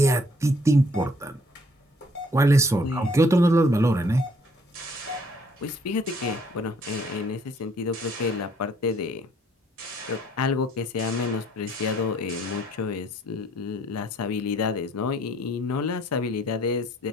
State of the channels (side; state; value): both; normal; correlation 0.62